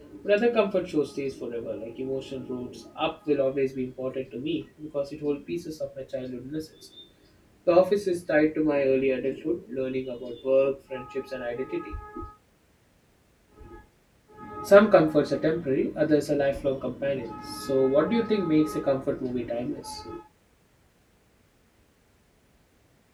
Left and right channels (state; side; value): identical; both; correlation 1.00